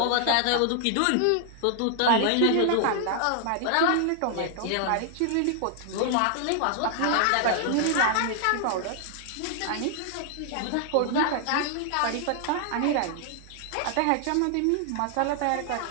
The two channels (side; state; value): both; different; correlation 0.00